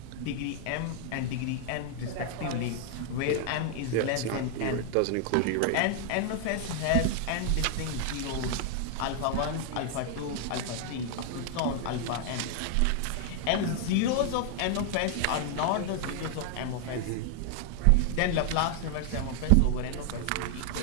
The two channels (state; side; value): different; both; correlation 0.00